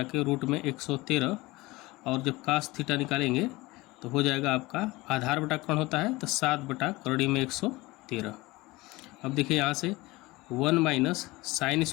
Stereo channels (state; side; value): quieter; right; 21.1 dB